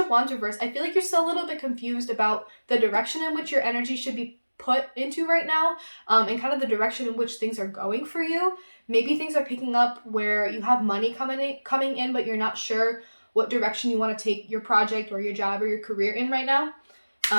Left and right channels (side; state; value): both; inverted; correlation -1.00